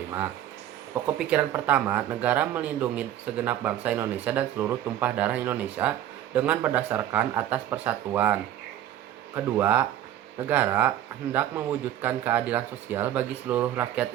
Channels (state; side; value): quieter; left; 12.0 dB